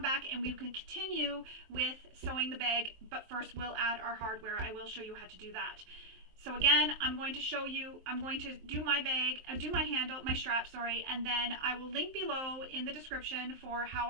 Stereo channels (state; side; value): late; left; 23 ms